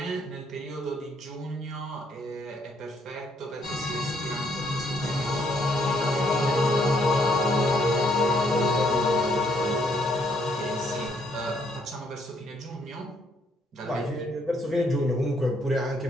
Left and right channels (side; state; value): both; normal; correlation 0.69